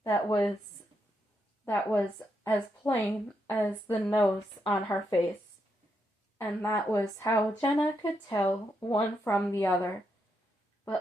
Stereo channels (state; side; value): normal; both; correlation 0.81